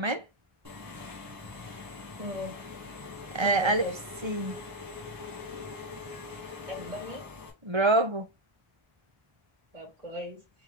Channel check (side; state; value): left; late; 1.3 ms